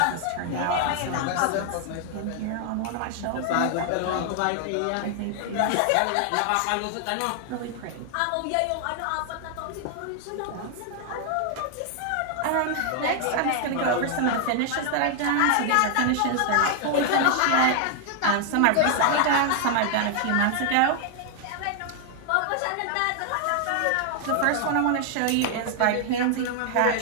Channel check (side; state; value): both; different; correlation 0.00